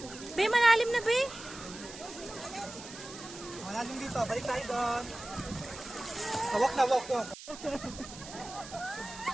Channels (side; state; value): right; noise; hiss, 14 dB below the sound